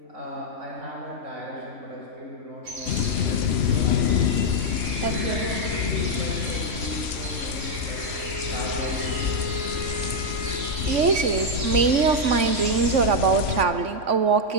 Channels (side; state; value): left; late; 3.0 ms